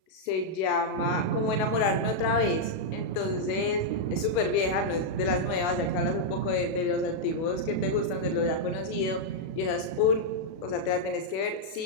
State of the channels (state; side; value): late; right; 37 ms